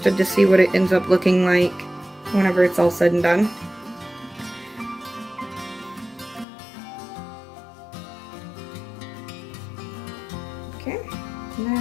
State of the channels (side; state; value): right; drops out; at 6.5 s